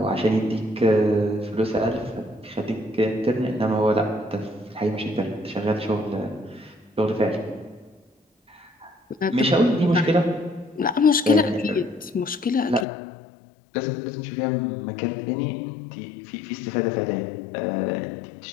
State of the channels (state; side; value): drops out; right; at 12.9 s